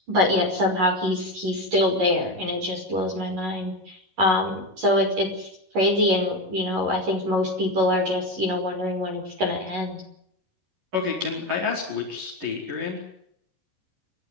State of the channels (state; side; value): late; left; 11 ms